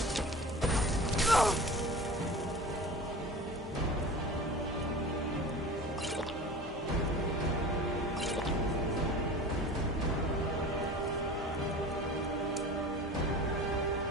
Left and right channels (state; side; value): normal; both; correlation 0.36